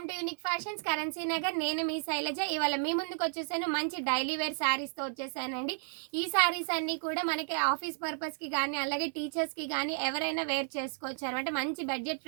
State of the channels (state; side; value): silent; left; 56 dB below the other